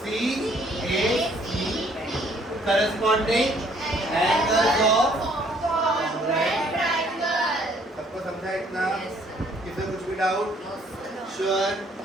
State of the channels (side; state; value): both; normal; correlation 0.62